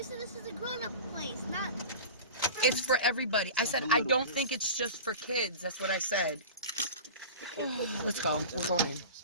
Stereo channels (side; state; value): both; inverted; correlation -0.33